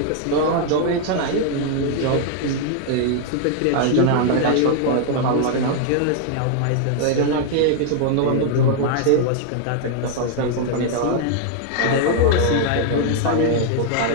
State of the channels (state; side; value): different; both; correlation 0.00